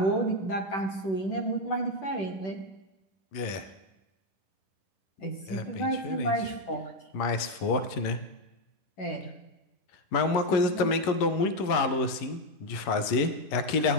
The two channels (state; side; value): late; right; 11 ms